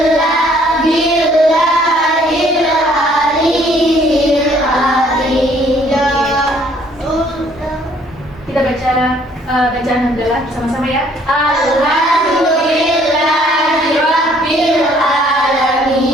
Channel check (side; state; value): both; normal; correlation 0.61